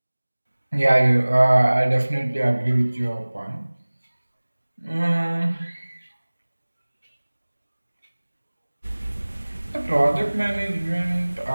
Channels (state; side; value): inverted; both; correlation -1.00